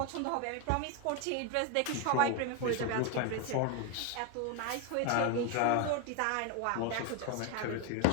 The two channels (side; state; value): both; different; correlation 0.01